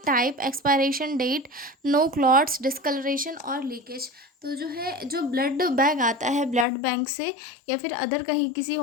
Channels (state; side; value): drops out; right; at 6.7 s